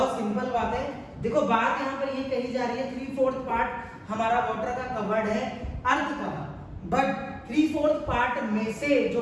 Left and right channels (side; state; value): both; identical; correlation 1.00